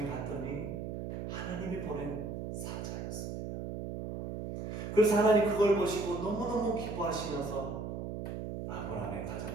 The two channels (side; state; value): right; noise; hum, 5 dB below the sound